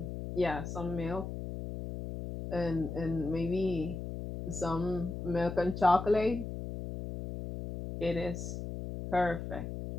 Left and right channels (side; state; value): left; noise; hum, 6 dB below the sound